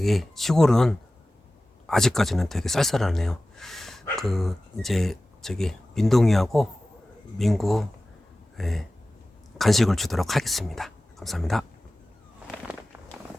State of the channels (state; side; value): normal; both; correlation 0.96